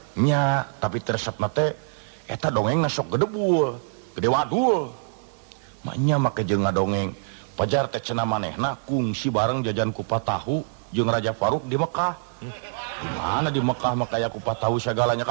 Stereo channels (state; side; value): silent; left; 62 dB below the other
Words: Nya, tapi resepna teh eta dongengna sok gedebul, gede wadul. Maknya make jeung ngadongeng pajar teh cenah manehna kungsi bareng jajan kupat tahu jeung Raja Faruk di Mekah. Di mana di Mekah mah kaya kupat tahu sagalanya